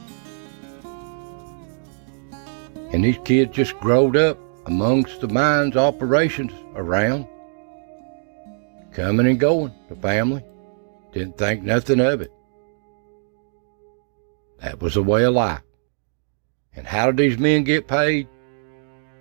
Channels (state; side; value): silent; left; digital silence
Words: And these kids just growed up amongst the mines operations around, coming and going, the family. Didn't think nothing of it. That was the way of life. And how did these men get paid?